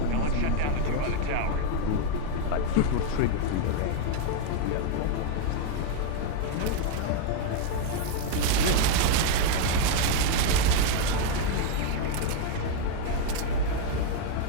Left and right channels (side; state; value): both; different; correlation 0.00